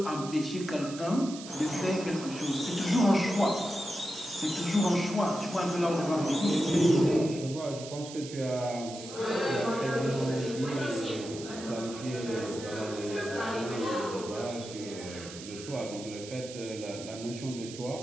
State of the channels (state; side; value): noise; right; hiss, 13 dB below the sound